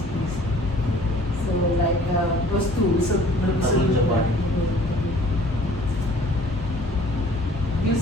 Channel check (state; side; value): normal; both; correlation 0.52